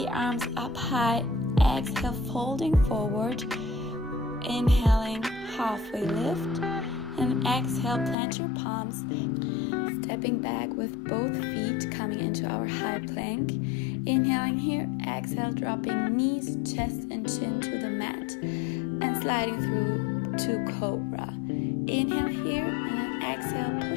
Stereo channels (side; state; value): right; drops out; at 8.2 s